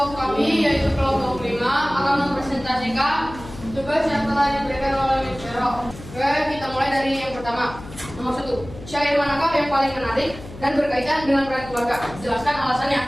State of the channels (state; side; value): noise; left; hum, 15 dB below the sound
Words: kami yaitu kelompok 5 akan mempresentasikan tugas yang telah diberikan oleh Miss Vero. Oke, kita mulai dari yang pertama. Nomor 1, syair manakah yang paling menarik dan berkaitan dengan peran keluarga? Jelaskan